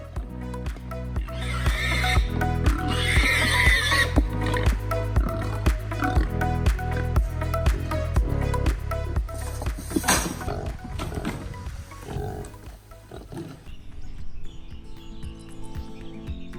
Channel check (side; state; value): both; identical; correlation 1.00